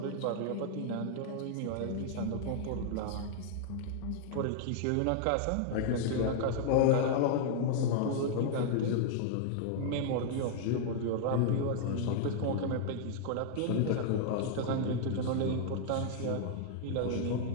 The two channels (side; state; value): both; different; correlation -0.01